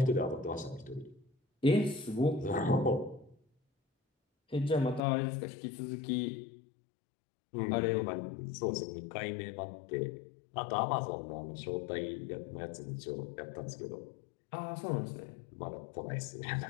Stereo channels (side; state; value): right; drops out; at 5.0 s